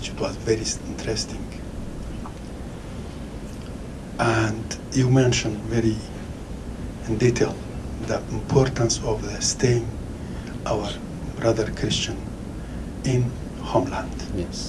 It was very interesting. And you mentioned very in detail the importance of staying our brother Christian in homeland.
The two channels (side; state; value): both; identical; correlation 1.00